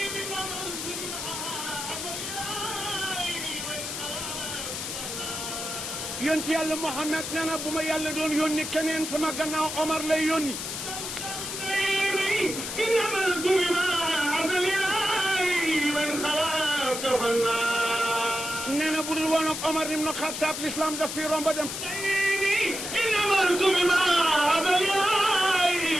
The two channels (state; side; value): noise; left; hiss, 5 dB below the sound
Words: yonent yàlla Muhammad nee na bu ma yàlla doon yónni keneen sama gannaaw Omar lay yónni. nee na bu dul woon ak Omar ibn Khattab l'islam daf fi romb dem.